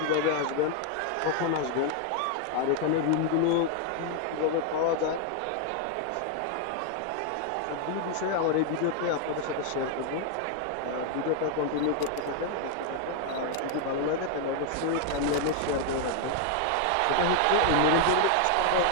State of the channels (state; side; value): different; both; correlation 0.00